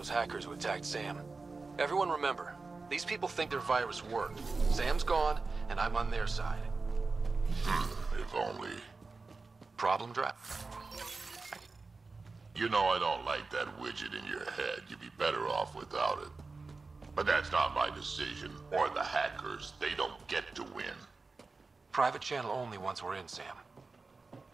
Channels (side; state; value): left; quieter; 4.0 dB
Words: hackers who attacked Sam. Everyone remember, these people think their virus worked. Sam's gone, and I'm on their side. If only. Problem draft. You know I don't like that widget in your head. You'd be better off without it. But that's not my decision, or the hackers. They don't get to win. Private channel only once we're in, Sam.